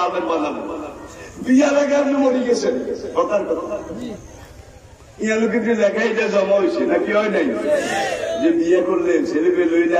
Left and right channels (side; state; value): both; identical; correlation 1.00